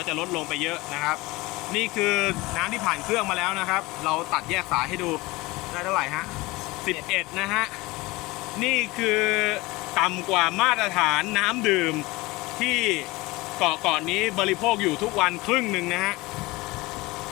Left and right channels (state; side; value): quieter; right; 21.8 dB